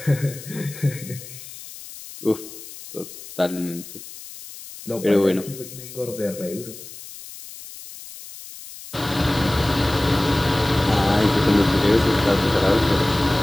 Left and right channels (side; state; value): left; noise; hiss, 15 dB below the sound